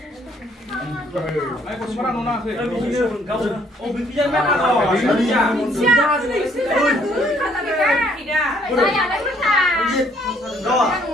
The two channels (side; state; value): both; normal; correlation 0.64